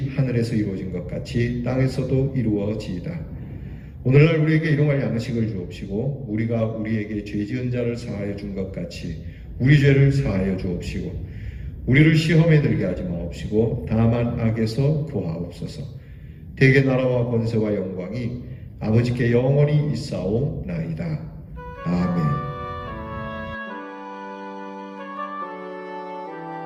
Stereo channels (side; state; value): both; identical; correlation 1.00